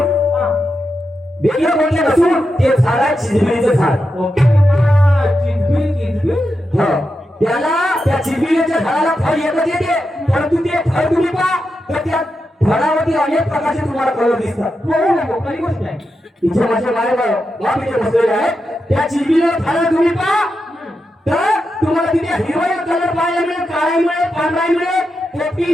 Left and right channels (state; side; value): normal; both; correlation 0.88